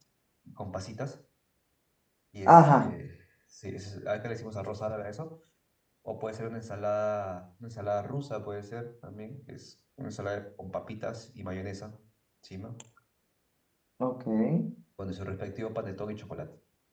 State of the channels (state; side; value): identical; both; correlation 1.00